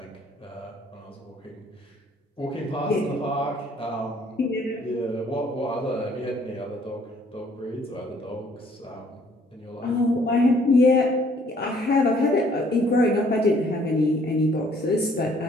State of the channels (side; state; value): both; normal; correlation 0.61